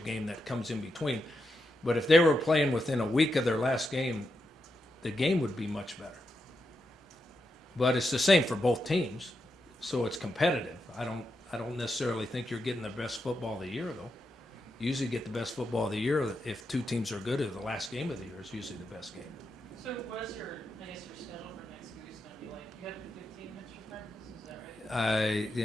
game that comes in between, But if they were playing within a week of their last game, the game would be much better. But it's the same for both teams, so it's competitive. I don't necessarily think you're getting the best football of the year, though. You usually get the best football of the year if two teams are good at the last game of the year is usually the best game. So what is your, I guess your schedule for next week is gonna be like, you have 15 extra practices, is that right?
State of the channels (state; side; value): normal; both; correlation 0.85